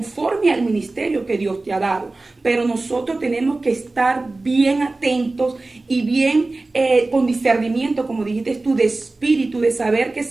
al ministerio que Dios te ha dado. Pero nosotros tenemos que estar bien atentos y bien con discernimiento, como dijiste tú, de espíritu, de saber que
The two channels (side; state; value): left; quieter; 3.2 dB